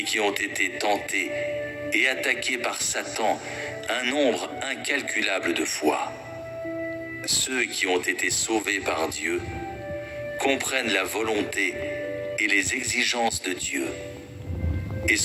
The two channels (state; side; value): identical; both; correlation 1.00